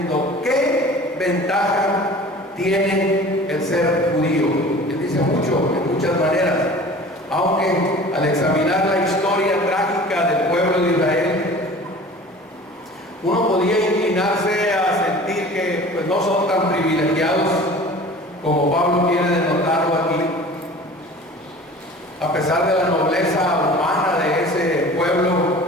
qué ventaja tiene el ser judío. Él dice mucho, en muchas maneras, aunque al examinar la historia trágica del pueblo de Israel, uno podía inclinarse a sentir que pues, no son tan privilegiados como Pablo quiere denotarlo aquí. A pesar de la nobleza humana de ese pueblo,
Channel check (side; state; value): both; normal; correlation 0.42